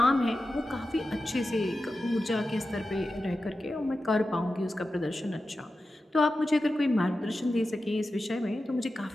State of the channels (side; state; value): both; normal; correlation 0.92